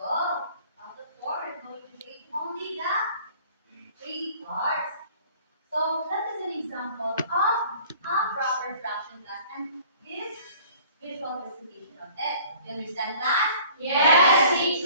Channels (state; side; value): inverted; both; correlation -0.51